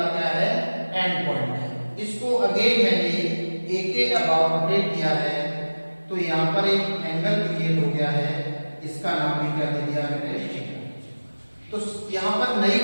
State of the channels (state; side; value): inverted; both; correlation -1.00